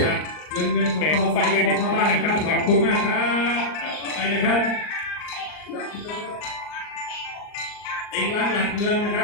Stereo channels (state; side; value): late; right; 39 ms